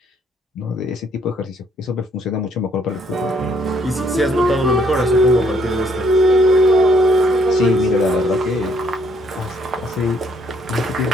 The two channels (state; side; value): normal; both; correlation 0.67